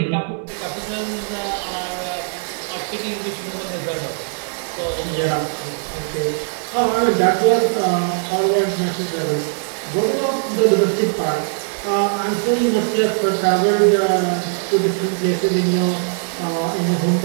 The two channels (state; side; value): silent; left; digital silence